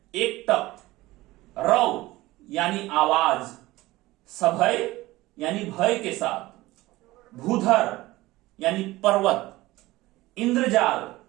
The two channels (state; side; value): quieter; left; 18.6 dB